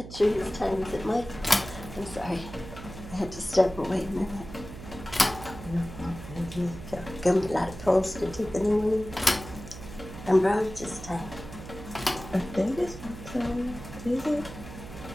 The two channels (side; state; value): right; noise; hum, 13 dB below the sound